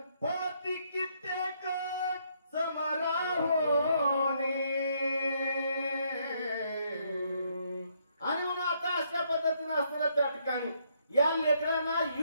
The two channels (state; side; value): inverted; both; correlation -0.72